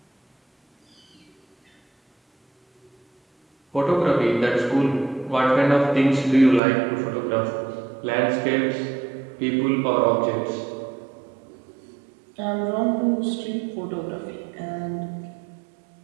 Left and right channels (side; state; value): left; drops out; at 6.6 s